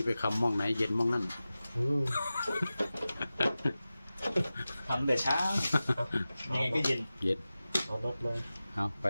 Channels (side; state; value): both; inverted; correlation -0.95